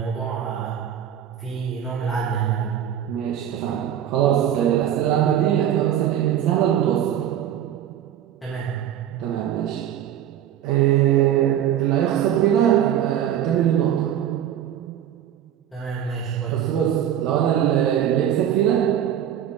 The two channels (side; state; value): left; quieter; 10.3 dB